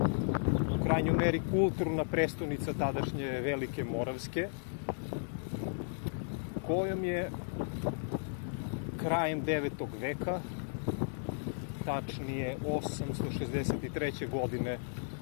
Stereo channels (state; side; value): silent; right; 55 dB below the other